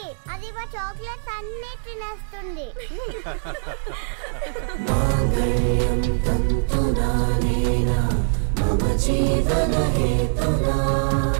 అది మా చాక్లెట్స్ అన్ని తినేస్తుంది.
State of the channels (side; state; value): left; silent; digital silence